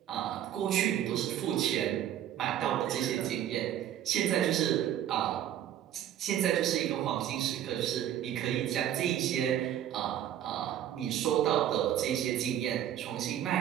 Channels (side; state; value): left; quieter; 11.0 dB